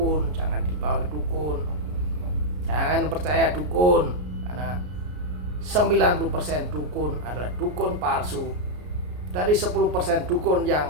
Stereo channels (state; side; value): late; left; 33 ms